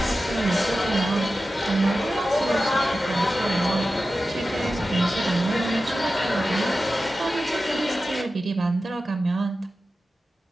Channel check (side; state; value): both; normal; correlation 0.93